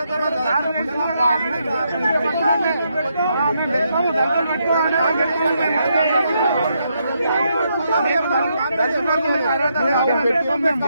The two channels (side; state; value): both; inverted; correlation -0.79